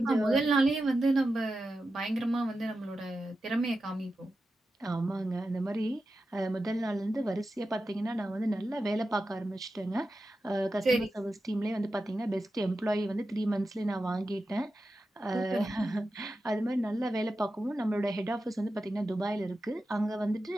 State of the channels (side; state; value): both; normal; correlation 0.91